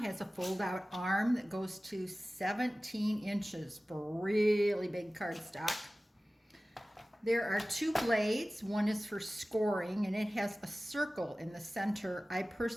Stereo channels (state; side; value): normal; both; correlation 0.97